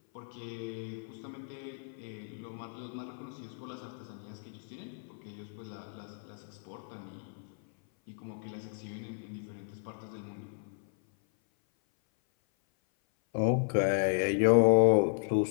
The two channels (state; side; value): silent; right; 55 dB below the other